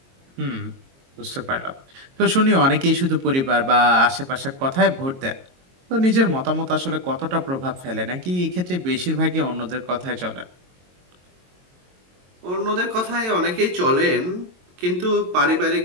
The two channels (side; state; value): left; late; 22 ms